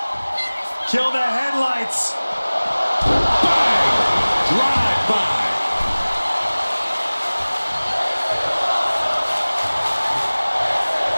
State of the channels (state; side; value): inverted; both; correlation -1.00